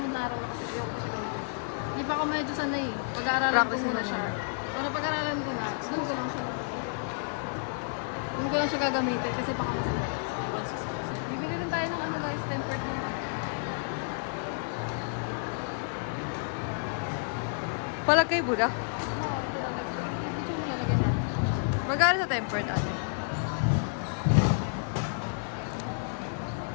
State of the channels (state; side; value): silent; right; digital silence